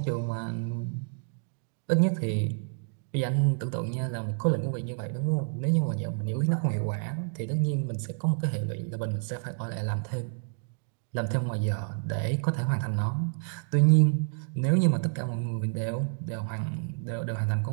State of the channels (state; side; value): silent; left; digital silence